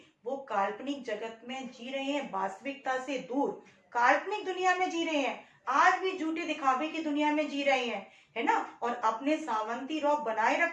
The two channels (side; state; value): both; identical; correlation 1.00